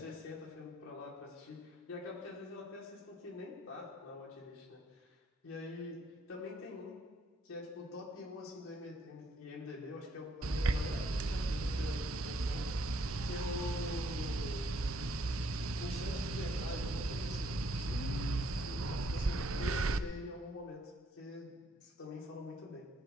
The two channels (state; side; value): normal; both; correlation 0.68